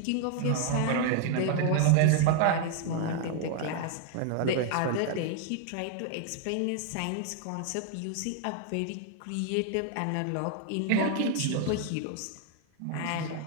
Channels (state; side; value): different; both; correlation 0.00